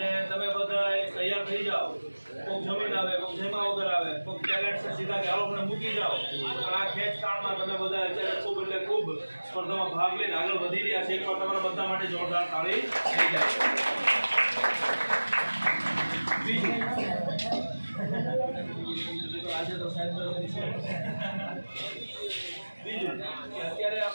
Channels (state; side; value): inverted; both; correlation -1.00